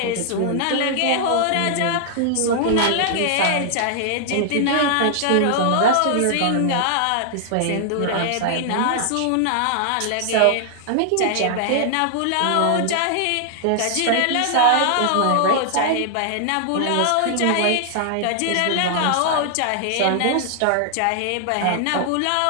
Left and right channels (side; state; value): both; different; correlation -0.01